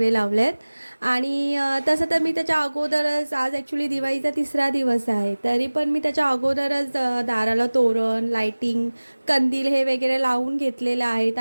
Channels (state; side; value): inverted; both; correlation -1.00